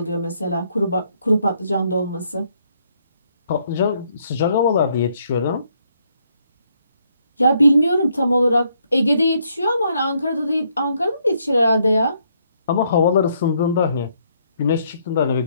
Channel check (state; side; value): inverted; both; correlation -0.72